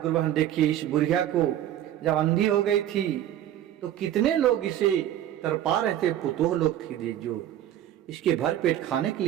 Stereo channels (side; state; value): left; quieter; 11.7 dB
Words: बहन, देखिए इस बुढ़िया को जब अंधी हो गई थी तो कितने लोग इसे तरपा रहे थे, पुतोह लोग थी जो इसके भर पेट खाने के